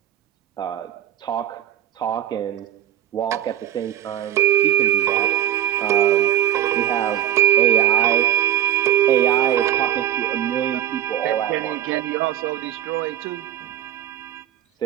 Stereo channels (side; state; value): left; quieter; 11.6 dB